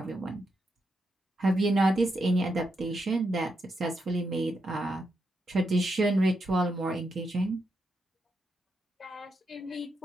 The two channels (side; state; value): both; normal; correlation 0.83